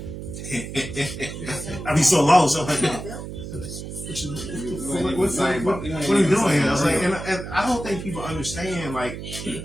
I be so lost. I'm like, what are you doing here? I was like, and I don't think people understand like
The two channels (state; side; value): noise; right; hum, 9 dB below the sound